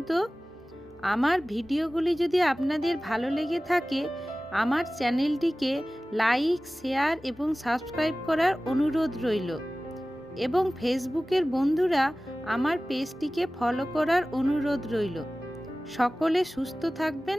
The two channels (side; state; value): both; normal; correlation 0.97